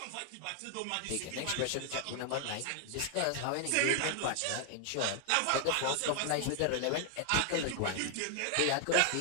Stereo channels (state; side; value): different; both; correlation 0.00